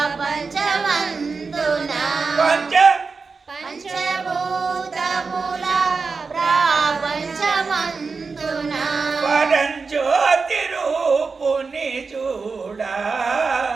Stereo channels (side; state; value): left; quieter; 4.6 dB